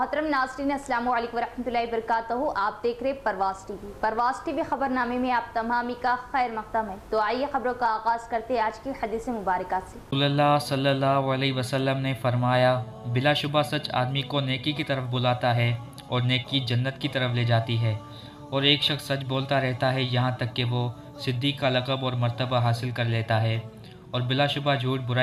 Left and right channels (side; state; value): both; identical; correlation 1.00